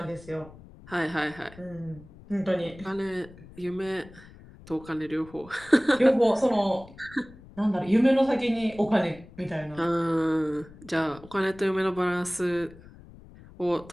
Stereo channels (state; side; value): noise; left; rumble, 20 dB below the sound